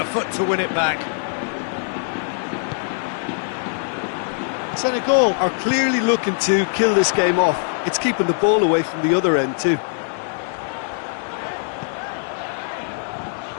foot to win it back. Senegal are clearly looking to kill this game off. It's keeping the ball away from the other end too.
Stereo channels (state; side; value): silent; right; digital silence